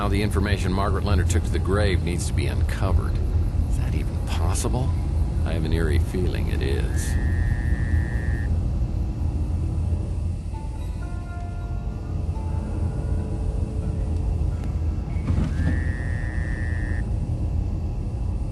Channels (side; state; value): both; identical; correlation 1.00